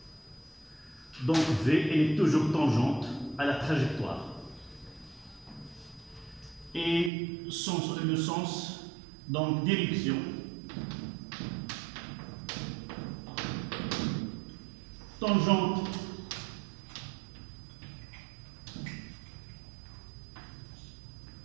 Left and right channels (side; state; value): left; drops out; at 7.1 s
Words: Donc V, elle est toujours tangente à la trajectoire. Et le sens, donc direction, tangente